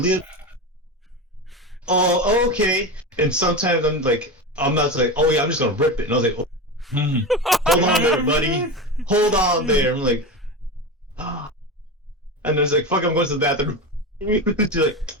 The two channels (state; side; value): normal; both; correlation 0.22